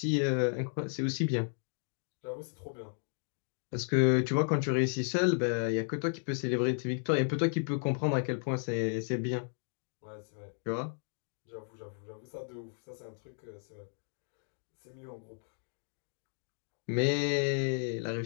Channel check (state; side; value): silent; right; 55 dB below the other